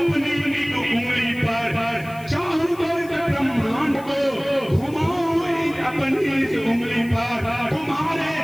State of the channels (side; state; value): left; noise; hiss, 23 dB below the sound